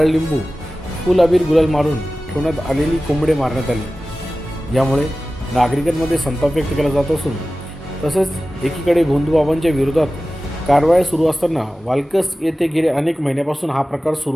लिंबू फुल अबीर गुलाल मारून ठेवण्यात आलेली कोंबडे मारण्यात आली। यामुळे नागरिकांमध्ये संताप व्यक्त केला जात असून तसेच एकीकडे भोंदूबाबांच्या विरोधात कारवाया सुरू असताना वालकस येथे गेले अनेक महिन्यापासून हा प्रकार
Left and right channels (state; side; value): normal; both; correlation 0.96